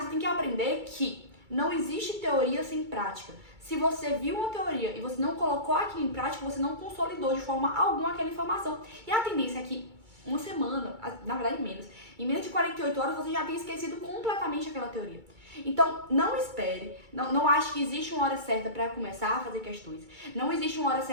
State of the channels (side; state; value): left; late; 2.3 ms